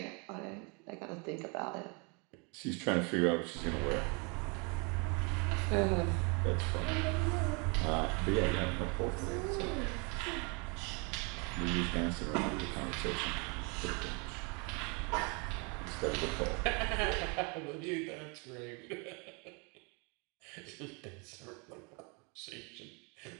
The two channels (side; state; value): left; quieter; 32.5 dB